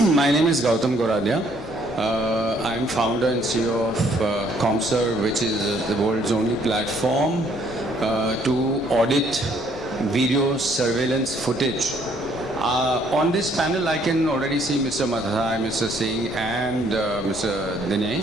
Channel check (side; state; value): both; normal; correlation 0.64